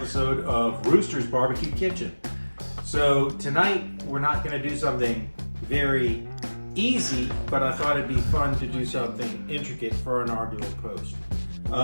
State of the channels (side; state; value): both; inverted; correlation -1.00